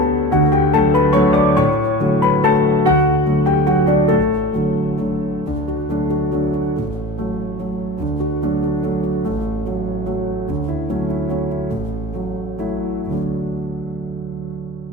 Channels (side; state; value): both; normal; correlation 0.36